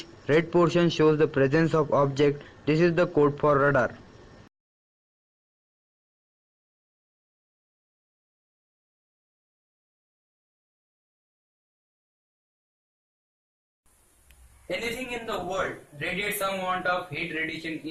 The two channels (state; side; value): identical; both; correlation 1.00